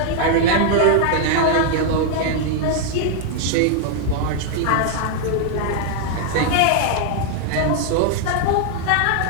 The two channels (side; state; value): both; different; correlation 0.00